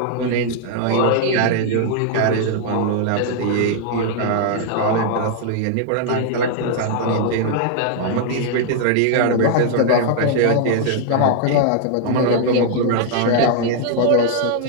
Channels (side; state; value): both; different; correlation -0.01